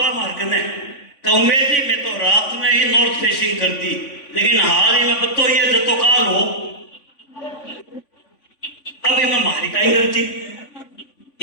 मार्ग ने उम्मीद ही में तो रात में ही नॉर्थ फेसिंग कर दी, लेकिन हाल ही में बतो ये जतो काल हो अभी मैं मारी का ही करती।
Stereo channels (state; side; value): late; right; 3.5 ms